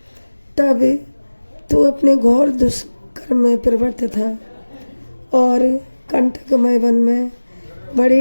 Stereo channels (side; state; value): both; inverted; correlation -1.00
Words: तब तू अपने घोर दुष्कर्म में प्रवृत्त था और कंटकमय वन में बड़ी